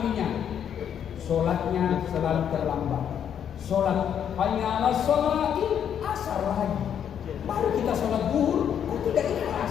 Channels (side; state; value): right; quieter; 8.8 dB